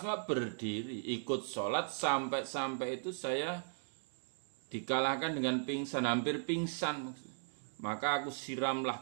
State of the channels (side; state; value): left; silent; digital silence